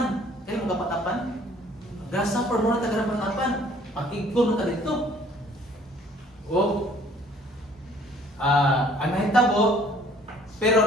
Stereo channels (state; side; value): normal; both; correlation 0.57